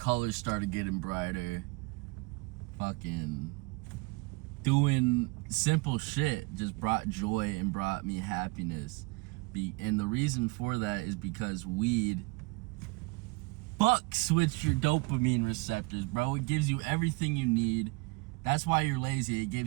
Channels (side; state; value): left; quieter; 26.5 dB